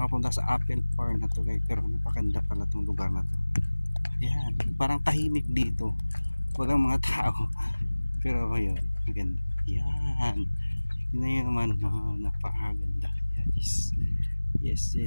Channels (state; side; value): inverted; both; correlation -1.00